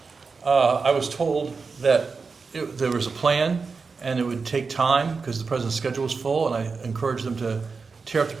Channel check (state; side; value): quieter; left; 4.7 dB